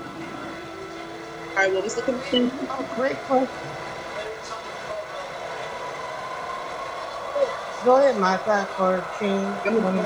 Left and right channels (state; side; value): identical; both; correlation 1.00